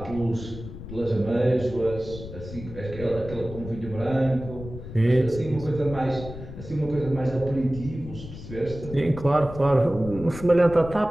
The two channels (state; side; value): noise; left; rumble, 12 dB below the sound